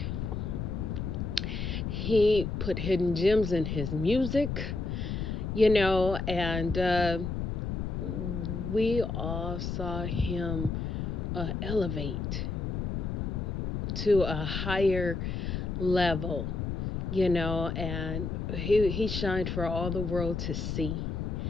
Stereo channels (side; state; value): left; noise; rumble, 2 dB below the sound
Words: He put hidden gems in his music, and we all saw him elevate to a higher level, and he shined for all the world to see.